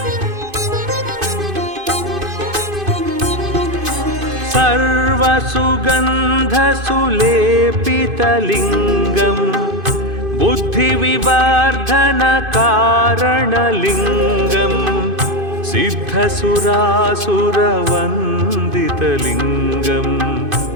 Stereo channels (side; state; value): left; late; 2.5 ms